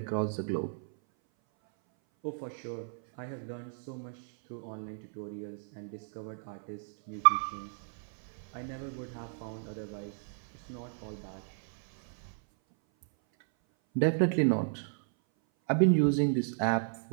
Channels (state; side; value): silent; left; 56 dB below the other